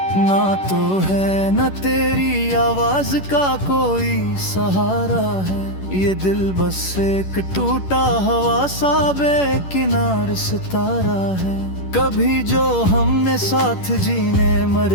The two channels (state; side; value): late; right; 11 ms